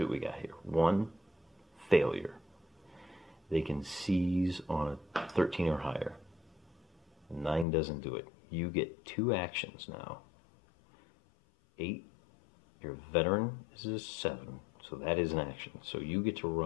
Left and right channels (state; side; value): drops out; right; at 7.7 s